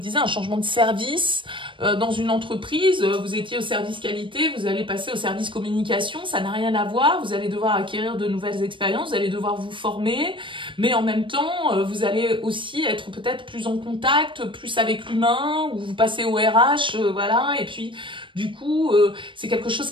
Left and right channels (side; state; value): left; late; 0.24 ms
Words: un changement de service dans une entreprise. Vous étiez au service qualité, vous allez passer au service communication, ça n'a rien à voir. Vous allez devoir acquérir de nouvelles expériences, vous allez devoir vous former, mais en même temps, vous allez aussi être peut-être plus en contact, plus avec l'humain, ou vous passez au RH, voilà, et puis du coup, c'est quelque chose